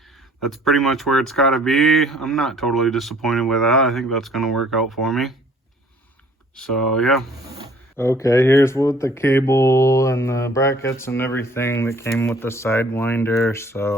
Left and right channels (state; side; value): normal; both; correlation 0.56